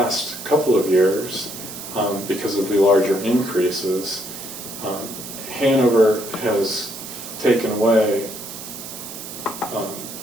couple of years, because of the larger increases, Hanover has taken away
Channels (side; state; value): right; noise; hiss, 11 dB below the sound